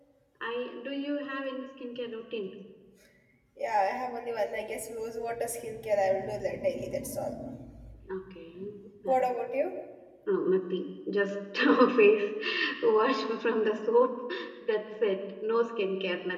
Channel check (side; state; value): both; identical; correlation 1.00